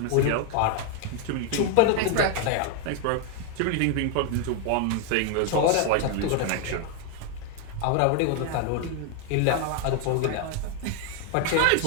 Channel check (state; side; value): different; both; correlation 0.01